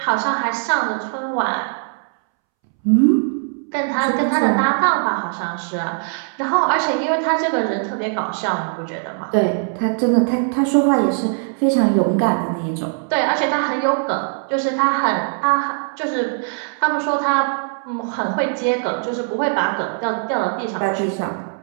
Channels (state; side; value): silent; left; 66 dB below the other